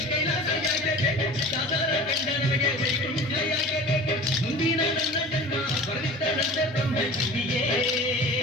ಕೈಲಾಸ ಯಾಕೆ ಬೇಕು, ಸಾಧಾರ ಕಂಡ ನಮಗೆ ವೈಕುಂಠ ಯಾಕೆ ಬೇಕು. ಮುಂದಿನ ನನ್ನ ಜನ್ಮ ಬರೆದಿದ್ದರಂತೆ ಬ್ರಹ್ಮ ಇಲ್ಲಿಯೇ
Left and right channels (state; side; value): normal; both; correlation 0.38